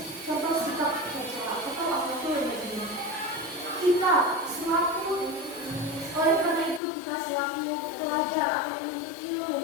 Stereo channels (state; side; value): drops out; right; at 6.8 s